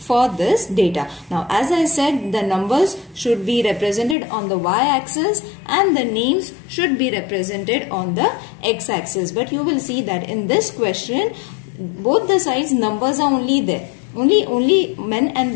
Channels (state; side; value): drops out; right; at 4.2 s